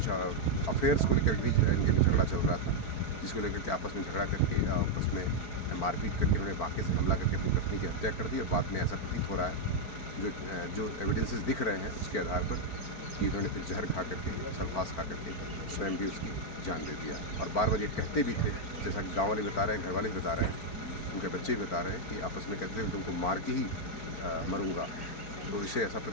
अफेयर्स को लेकर भी इनके में झगड़ा चल रहा था, जिसको लेकर के आपस में झगड़ा करके आपस में मारपीट करके उन्होंने बांके से हमला करके अपनी पत्नी की हत्या कर दी। और बाद में ऐसा प्रतीत हो रहा है, जो एविडेंसेस दिख रहे हैं उसके आधार पर, कि उन्होंने फिर जहर खा करके, सल्फास खा करके स्वयं भी उसकी जान दे दिया। और बार-बार ये कहते भी थे, जैसा कि गाँव वाले बता रहे हैं, घर वाले भी बता रहे हैं, उनके बच्चे भी बता रहे हैं कि आपस में कहते थे तुमको मार के ही मरूँगा। तो इससे ऐसा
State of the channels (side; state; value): right; late; 4.5 ms